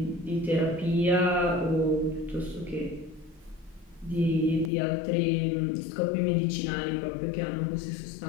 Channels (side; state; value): right; drops out; at 4.7 s